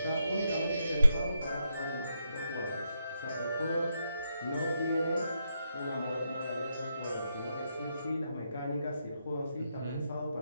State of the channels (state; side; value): inverted; both; correlation -0.82